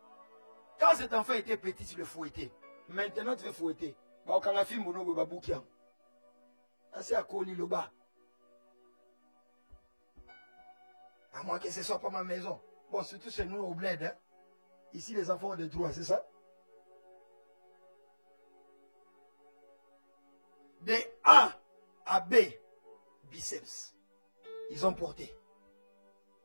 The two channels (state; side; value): inverted; both; correlation -1.00